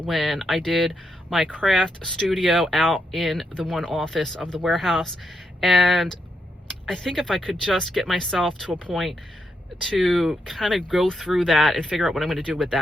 I did my craft studio out in the one office of the warehouse. And I think if I could just get myself to a point to kind of go through that and figure out what I'm going to do with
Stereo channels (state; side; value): normal; both; correlation 0.81